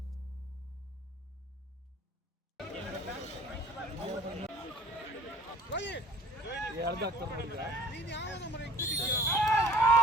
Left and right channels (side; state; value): both; normal; correlation 0.50